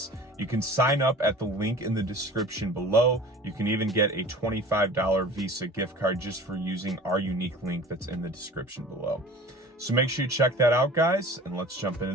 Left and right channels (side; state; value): both; normal; correlation 0.42